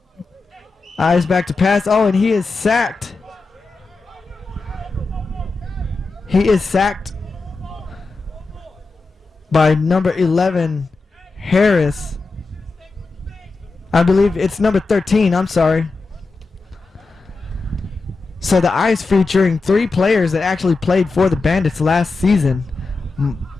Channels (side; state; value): right; quieter; 3.8 dB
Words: Eyes back to pass. Oh, and he is sacked. He is sacked by number 11, Harris. I believe it's number 13. I'm sorry. So the Ice featuring 3 players that actually played for the Bandits last season.